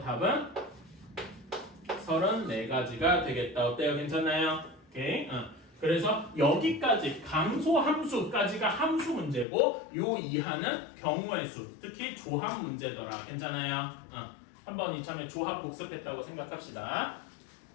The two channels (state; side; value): drops out; right; at 9.5 s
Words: 답은 34가지가 되겠다. 어때요? 괜찮나요? 오케이. 그래서 여기까지 감소 함수까지가 함수 문제고 요 이하는 경우의 수, 특히 조합 문제더라. 괜찮아요? 한번 이참에 조합 복습했다고 생각합시다.